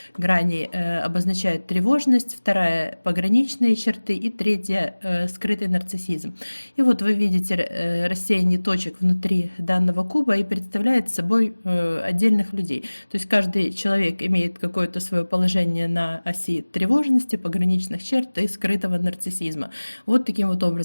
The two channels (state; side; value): inverted; both; correlation -1.00